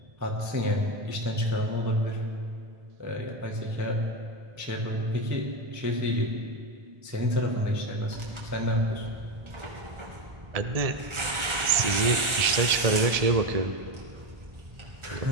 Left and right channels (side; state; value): left; late; 1.4 ms